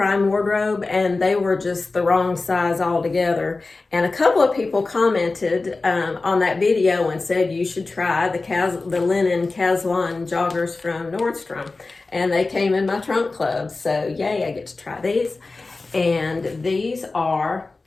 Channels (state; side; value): quieter; right; 3.6 dB